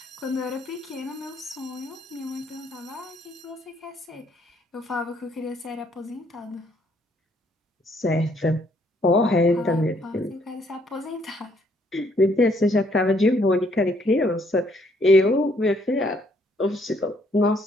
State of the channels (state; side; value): normal; both; correlation 0.68